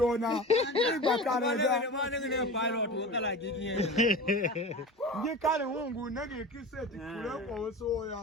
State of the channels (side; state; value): both; normal; correlation 0.32